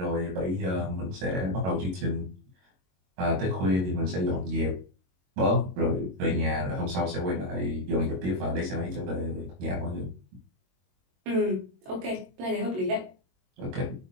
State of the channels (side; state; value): left; late; 22 ms